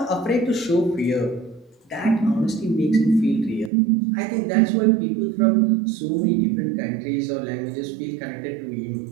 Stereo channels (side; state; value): left; drops out; at 3.7 s